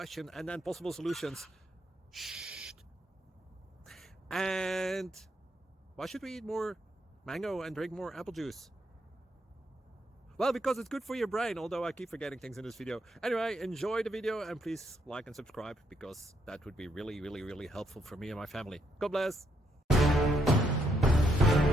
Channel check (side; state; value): both; normal; correlation 0.75